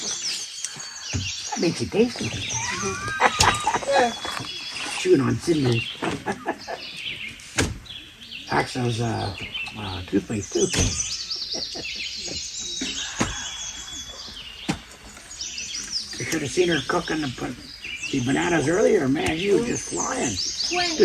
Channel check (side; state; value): both; identical; correlation 1.00